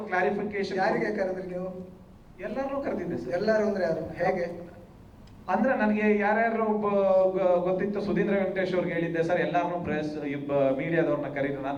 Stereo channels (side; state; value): both; identical; correlation 1.00